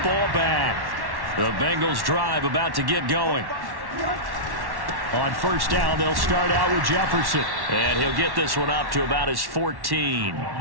back. The Bengals drive about to get going. On 1st down, they'll start out with Jefferson. And he'll get this one up to about his 14.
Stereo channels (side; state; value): left; late; 1.1 ms